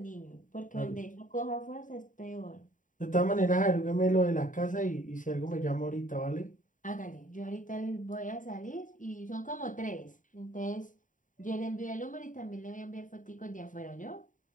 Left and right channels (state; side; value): late; right; 0.38 ms